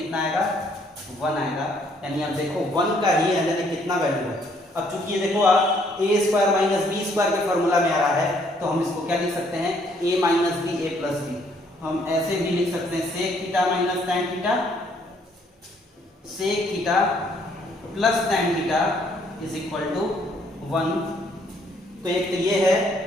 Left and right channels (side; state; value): both; normal; correlation 0.66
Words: आएगा, वन आएगा। यानी आप देखो वन का ही यानी कितना वैल्यू है। अब चूंकि ये देखो आप a square minus B square के फॉर्मूला में आ रहा है तो हम इसको क्या लिख सकते हैं, a minus B A plus B. हम ऐसे भी लिख सकते हैं sec theta minus tan theta, sec theta plus tan theta is equal to one. तो एक तो ये है,